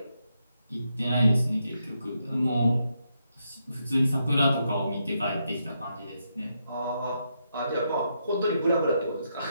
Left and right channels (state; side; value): inverted; both; correlation -0.81